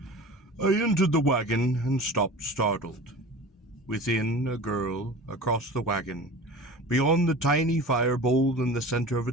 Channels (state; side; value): normal; both; correlation 0.37